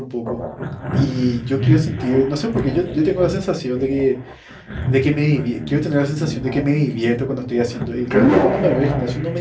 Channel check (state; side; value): identical; both; correlation 1.00